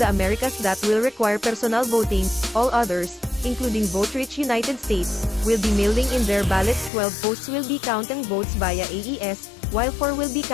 Americas that will require personal voting. All others, including vote-rich United States, will be mailing in their ballots. 12 posts will be counting votes via AES, while 4 will be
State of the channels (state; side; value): drops out; right; at 6.9 s